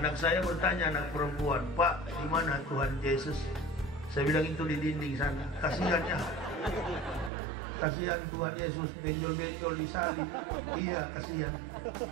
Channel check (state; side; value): drops out; left; at 7.3 s